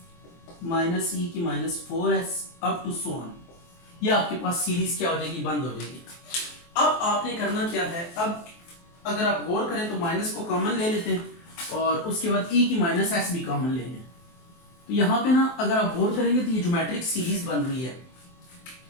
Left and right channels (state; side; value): late; right; 23 ms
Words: माइनस e की minus 4s up to so on. ये आपके पास सीरीज क्या हो जाएगी, बंद हो जाएगी। अब आपने करना क्या है, अब अगर आप गौर करें तो माइनस को कॉमन ले लेते हैं और उसके बाद e की माइनस s भी कॉमन ले लें। तो यहाँ पे ना अगर आप गौर करेंगे तो ये ज्योमेट्रिक सीरीज बन रही है,